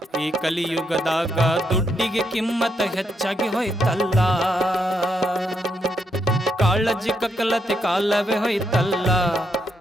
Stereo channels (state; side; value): normal; both; correlation 0.79